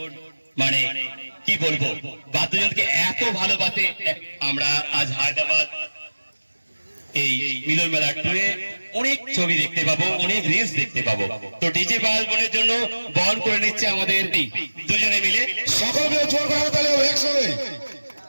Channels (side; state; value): both; inverted; correlation -1.00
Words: মানে কি বলবো, বাদ্যযন্ত্রকে এত ভালোবাসে। আমরা আজ হায়দ্রাবাদ এই মিলন মেলা টুরে অনেক ছবি দেখতে পাবো, অনেক রিলস দেখতে পাবো। তো ডিজে পায়েল বোনের জন্য বহন করে নিচ্ছে আমাদের দুজনে মিলে। সকলকে জোর করা তাহলে একসঙ্গে।